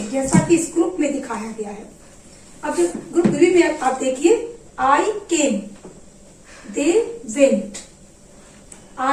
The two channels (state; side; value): identical; both; correlation 1.00